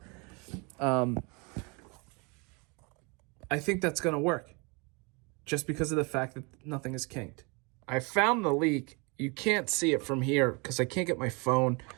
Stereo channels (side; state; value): left; quieter; 29.9 dB